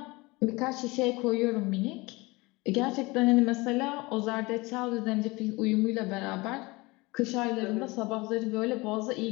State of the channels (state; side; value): quieter; right; 23.4 dB